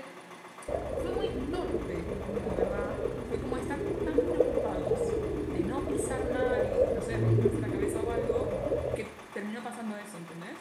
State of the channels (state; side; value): identical; both; correlation 1.00